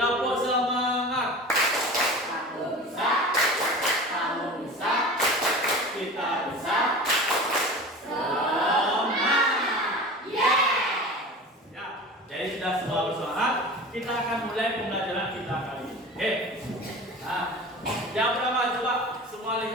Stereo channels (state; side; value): normal; both; correlation 0.35